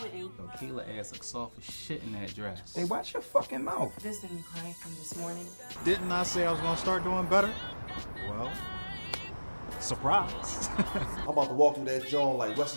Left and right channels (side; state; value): both; inverted; correlation -1.00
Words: Yo, Kayla ass looks soft as shit in that dress. Hey, watch your fucking mouth. This didn't cry from this morning. Didn't I say I was gonna start doing better? Well, surprise. I'm about to walk through that joint like